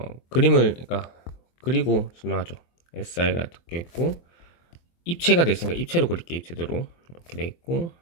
그림을 그러니까 그리고 설명하죠. SI가 박혀 있고, 입체가 돼 있으니까 입체로 그릴게요. 입체대로 이렇게 돼 있고,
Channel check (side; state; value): right; late; 24 ms